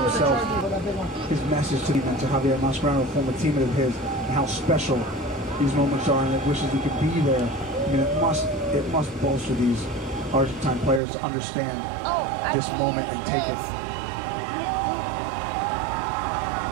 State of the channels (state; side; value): drops out; left; at 11.0 s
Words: himself. His message to Javier Mascherano, a former teammate of his, and how special these moments are, and it wishes he could be there. I mean, it must bolster these Argentine players to understand this moment and take it.